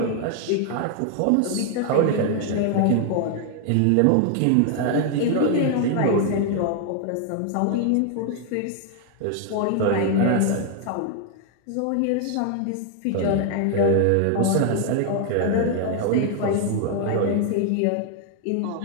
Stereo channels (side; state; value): both; different; correlation 0.00